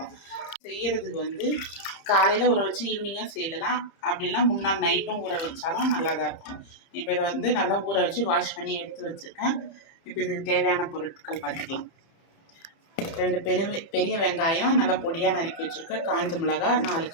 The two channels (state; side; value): late; right; 30 ms